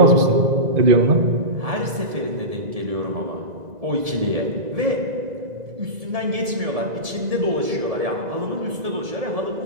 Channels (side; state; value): left; late; 2.0 ms